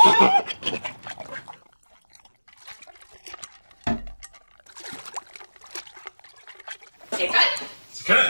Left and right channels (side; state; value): both; inverted; correlation -1.00